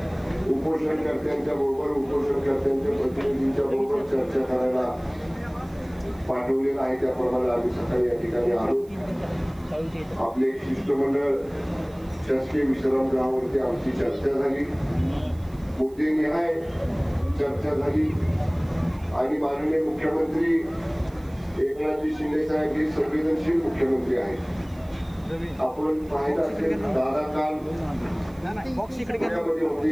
उपोषणकर्त्यांच्या बरोबर उपोषणकर्त्यांच्या प्रतिनिधींच्या बरोबर चर्चा करायला पाठवलेलं आहे। त्याप्रमाणे आम्ही सकाळी या ठिकाणी आलो। आपले शिष्टमंडळ शासकीय विश्रामगृहावरती आमची चर्चा झाली, मुद्देनिहाय चर्चा झाली आणि माननीय मुख्यमंत्री एकनाथ शिंदे साहेब हे संवेदनशील मुख्यमंत्री आहेत। आपण पाहिलं असेल, दादा काल पुण्यामध्ये होते,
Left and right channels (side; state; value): right; noise; hiss, 29 dB below the sound